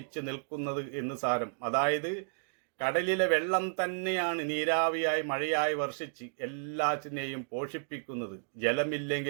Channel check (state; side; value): silent; left; digital silence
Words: നിൽക്കുന്നത് എന്ന് സാരം. അതായത് കടലിലെ വെള്ളം തന്നെയാണ് നീരാവിയായി മഴയായി വർഷിച്ച് എല്ലാറ്റിനെയും പോഷിപ്പിക്കുന്നത്.